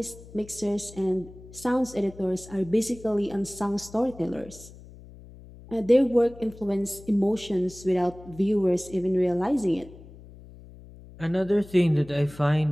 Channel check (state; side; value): noise; left; hum, 19 dB below the sound